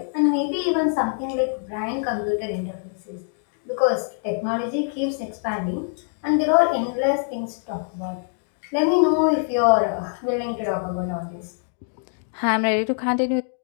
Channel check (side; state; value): right; silent; digital silence